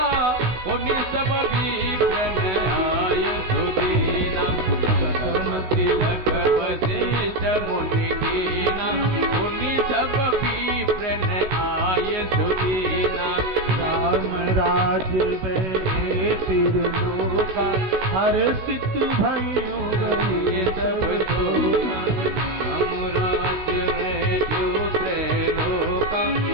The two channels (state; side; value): late; left; 16 ms